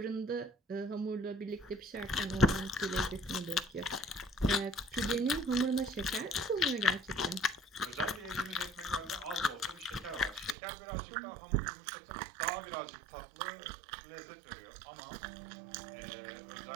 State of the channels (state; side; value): drops out; left; at 10.6 s